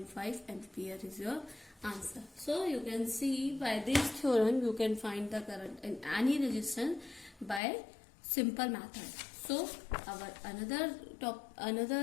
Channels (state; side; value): drops out; right; at 7.6 s